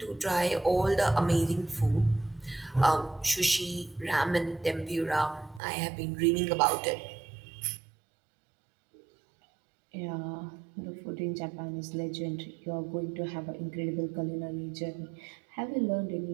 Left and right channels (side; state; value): left; drops out; at 5.6 s